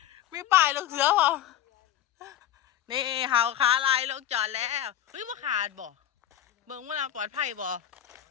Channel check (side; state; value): right; quieter; 11.6 dB